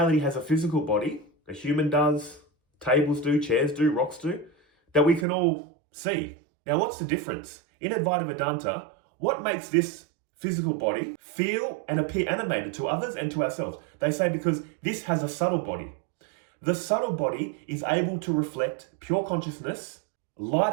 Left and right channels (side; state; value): left; drops out; at 5.2 s